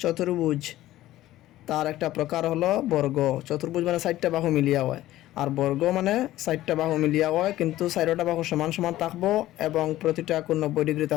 চতুর্ভুজ তার একটা প্রকার হলো বর্গ। চতুর্ভুজ মানে 4টা বাহু মিলিয়া হয়, আর বর্গ মানে 4টা বাহু মিলিয়া হয়, কিন্তু 4টা বাহু সমান সমান থাকবো এবং প্রতিটা কোণ 90 ডিগ্রি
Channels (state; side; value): quieter; right; 15.0 dB